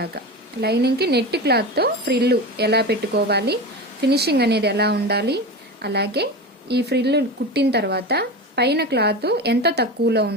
లైనింగ్కి నెట్ క్లాత్తో ఫ్రిల్ ఎలా పెట్టుకోవాలి, ఫినిషింగ్ అనేది ఎలా ఉండాలి, అలాగే ఈ ఫ్రిల్ కుట్టిన తర్వాత పైన క్లాత్ ఎంత తక్కువలో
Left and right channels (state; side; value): normal; both; correlation 0.25